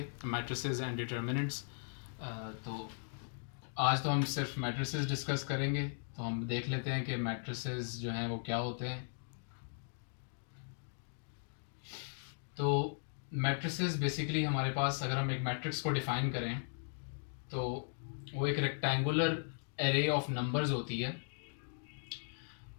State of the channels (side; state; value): right; silent; digital silence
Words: मैट्रिसेस एंड डिटर्मिनेंट्स। तो आज तो हम सिर्फ मैट्रिसेस डिस्कस करेंगे। तो हम देख लेते हैं कि मैट्रिसेस जो हैं वो क्या होते हैं। तो मैट्रिसेस बेसिकली हमारे पास, अगर हम एक मैट्रिक्स को डिफ़ाइन करें तो वो एक रेक्टेंगुलर एरे ऑफ नंबर्स होती है।